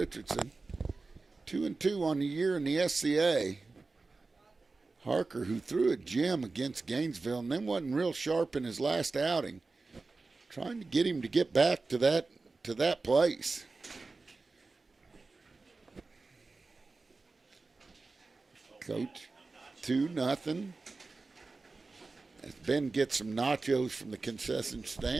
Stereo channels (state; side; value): quieter; left; 3.8 dB